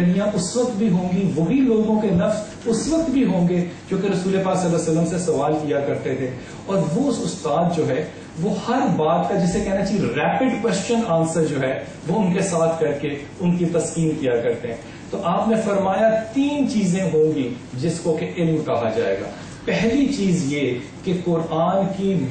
اس وقت بھی ہوں گی، وہی لوگوں کے نفس اس وقت بھی ہوں گے جو کہ رسول پاک صلی اللہ علیہ وسلم سے سوال کیا کرتے تھے. اور وہ استاد جو ہے وہ ہر بات کا جسے کہنا چاہیے ریپڈ کوشچن آنسر جو ہے وہ ان کے ساتھ کر کے ان کی تسکین کیا کرتے ہیں. تو آپ نے فرمایا 3 چیزیں ہوں گی جس کو کہ علم کہا جائے گا. پہلی چیز یہ کہ قرآن کی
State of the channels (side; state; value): both; identical; correlation 1.00